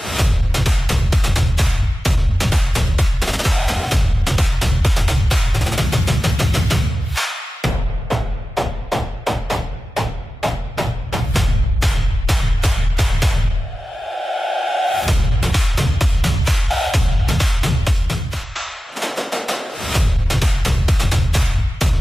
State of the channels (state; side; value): normal; both; correlation 0.94